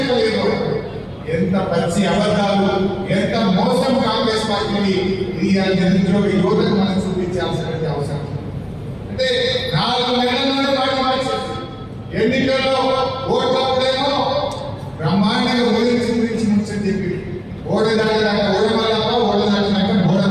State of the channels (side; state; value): both; identical; correlation 1.00